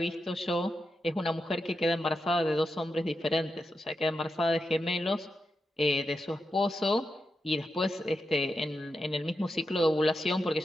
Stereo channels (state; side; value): normal; both; correlation 0.88